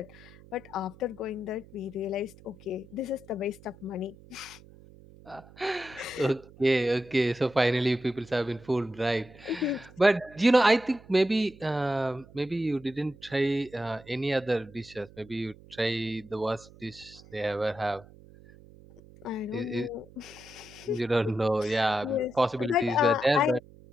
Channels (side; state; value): right; noise; hum, 22 dB below the sound